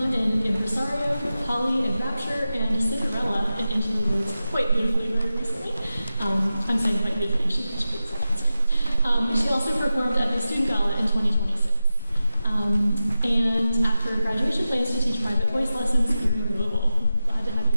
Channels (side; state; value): both; inverted; correlation -0.93